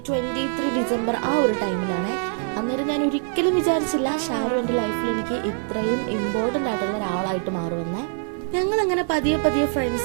23 ഡിസംബർ ആ ഒരു ടൈമിലാണ്. അന്നേരം ഞാൻ ഒരിക്കലും വിചാരിച്ചില്ല ഷാരു എൻ്റെ ലൈഫിൽ എനിക്ക് ഇത്രയും ഇമ്പോർട്ടൻ്റ് ആയിട്ടുള്ള ഒരാളായിട്ട് മാറുമെന്നേ. ഞങ്ങളങ്ങനെ പതിയെ പതിയെ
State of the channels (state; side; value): silent; left; 63 dB below the other